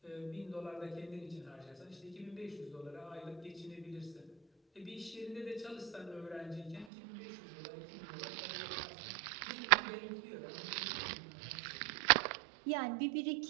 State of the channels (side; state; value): left; drops out; at 6.9 s